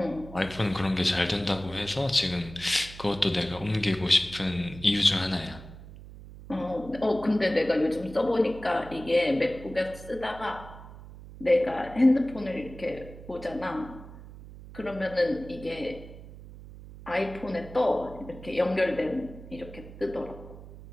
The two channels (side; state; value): right; noise; hum, 16 dB below the sound